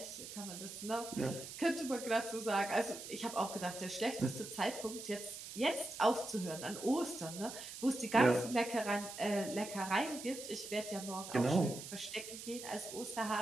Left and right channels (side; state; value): right; noise; hiss, 10 dB below the sound